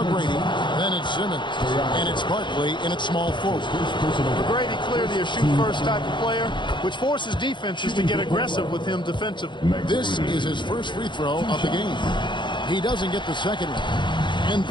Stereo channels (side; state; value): right; late; 0.23 ms